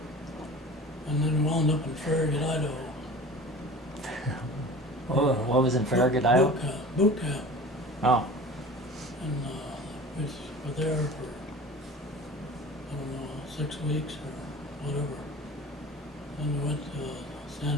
and then wound up in Farragut, Idaho. Oh, what was in Farragut, Iowa? Boot camp. Oh, And we were there for, I don't know, 6 weeks or whatever. Then we went to San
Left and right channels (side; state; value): both; normal; correlation 0.39